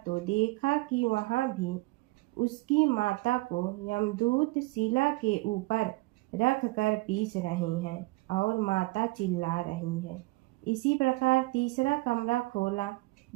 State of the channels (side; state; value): left; quieter; 22.8 dB